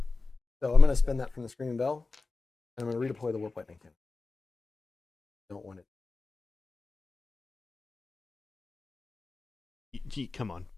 I'm going to spend that from the Screaming Bell, and I'm going to redeploy the Warp Lightning Cannon. Don't want it. Come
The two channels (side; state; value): right; quieter; 3.8 dB